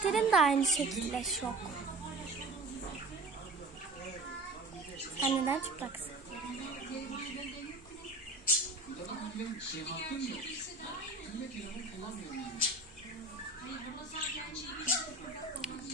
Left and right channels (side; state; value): left; quieter; 3.0 dB